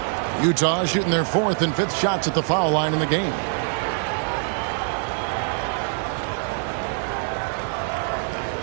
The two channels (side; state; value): left; silent; 59 dB below the other